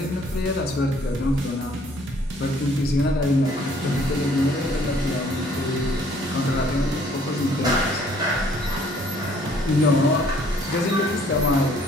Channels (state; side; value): normal; both; correlation 0.60